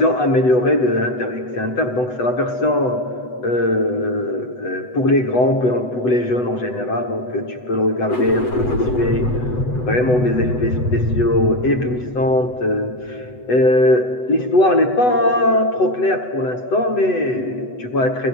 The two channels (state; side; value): late; right; 8.0 ms